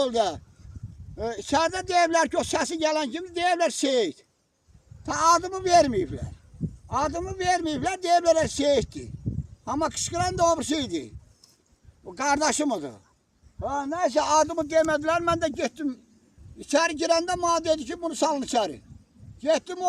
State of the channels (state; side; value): identical; both; correlation 1.00